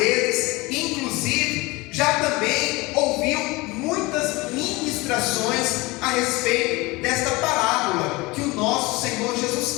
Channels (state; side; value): quieter; right; 23.1 dB